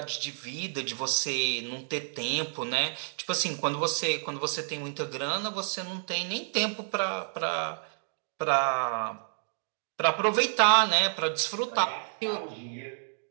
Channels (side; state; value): left; silent; digital silence